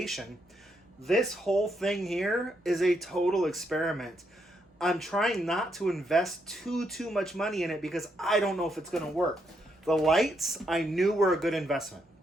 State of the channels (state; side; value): normal; both; correlation 0.78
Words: This whole thing here is a total experiment. I'm trying not to invest too much money in it because I don't know if it's going to work. The lights I knew were a good investment.